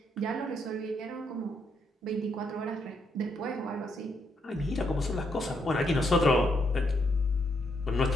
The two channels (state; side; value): normal; both; correlation 0.76